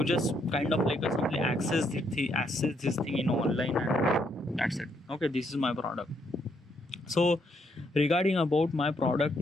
just kind of like a simply access this thing in online, and that's it. Okay, this is my product. So regarding about my product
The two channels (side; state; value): both; normal; correlation 0.74